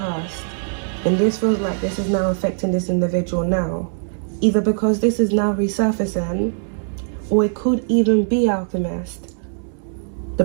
and this feels like this is now affecting this individual now, either because this is now resurfacing, or it could even be, Alchemist, the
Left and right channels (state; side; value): silent; left; digital silence